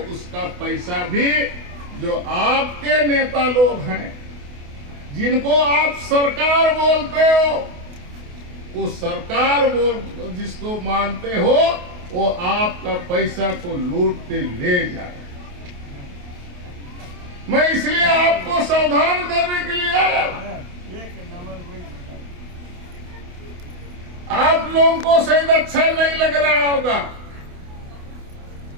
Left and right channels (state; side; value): late; left; 28 ms